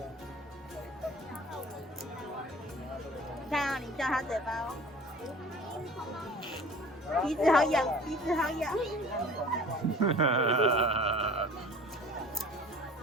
你看啊，你叫它嘴巴哦。鼻子好痒，鼻子好痒。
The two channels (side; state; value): both; normal; correlation 0.44